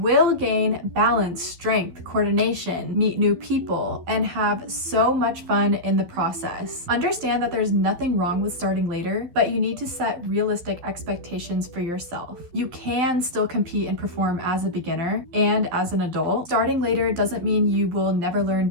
gain balance, strength, coordination, meet new people, and have so much fun in the process. Understand that there's nothing wrong with starting later, but you need to set realistic expectations for yourself. You can still compete and perform as a beginner and as an adult. Starting later doesn't mean you will never learn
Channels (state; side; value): late; left; 12 ms